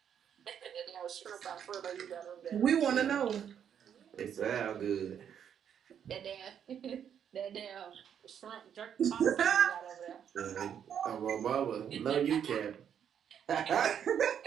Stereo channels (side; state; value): left; quieter; 8.6 dB